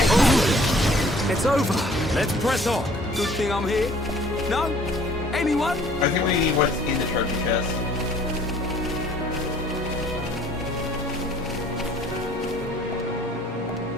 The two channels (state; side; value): normal; both; correlation 0.55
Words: It's over. Let's press on. Good thing I'm here. No? Anyone? I think we need what's in the treasure chest.